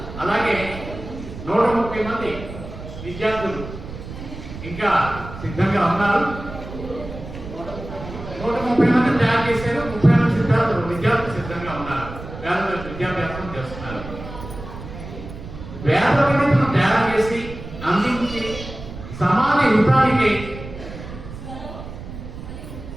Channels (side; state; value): right; noise; rumble, 11 dB below the sound